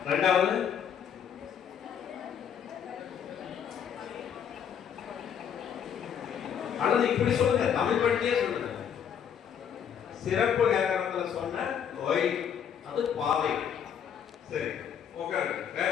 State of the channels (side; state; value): right; quieter; 8.3 dB